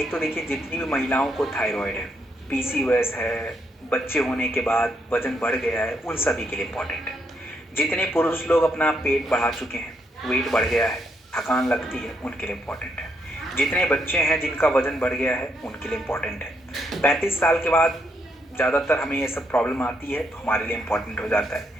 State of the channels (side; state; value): both; normal; correlation 0.76